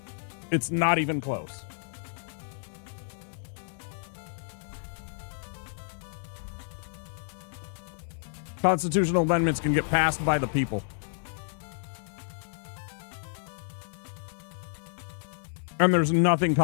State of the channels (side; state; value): right; silent; digital silence